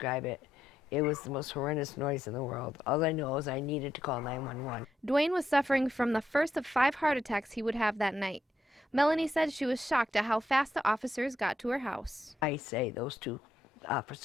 it. It was the most horrendous noise in the world. All I know is I needed to call 911. Dwayne was suffering from the first of 5 heart attacks he would have that night. Melanie said she was shocked at how fast the officers got to her house. I say those 2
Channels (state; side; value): normal; both; correlation 0.79